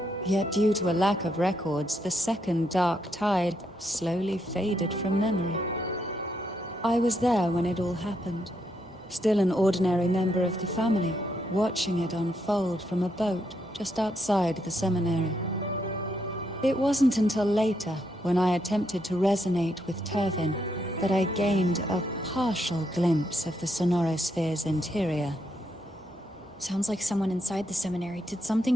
Yet due to a lack of records, the second dark tide slowly faded from memory. I was there when it all happened. Still an ordinary member of the family, watching it unfold from a boat just outside the seminary. It wasn't until later, when I attempted to resonate with Turvin, that I gained a partial glimpse of the Sonorosphere's interior. Sounds like someone inside the seminary did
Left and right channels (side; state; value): both; normal; correlation 0.78